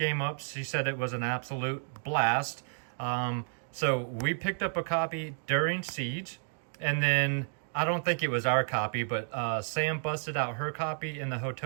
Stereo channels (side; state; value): left; silent; 57 dB below the other